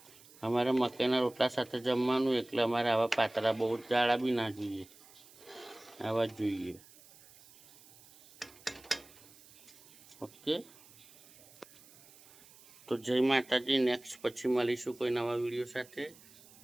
અમારે મકાઈના રોટલા સાથે જમવાનું એટલે અમારે આવા પાતળા બહુ જાડા બી ના જોઈએ, આવા જ જોઈએ. ઓકે, તો જય માતાજી. નેક્સ્ટ પછી મળીશું કોઈ નવા વિડીયો સાથે.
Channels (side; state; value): right; noise; hiss, 23 dB below the sound